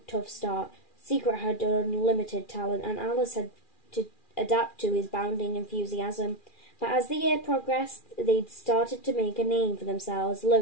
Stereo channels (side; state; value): right; late; 2.4 ms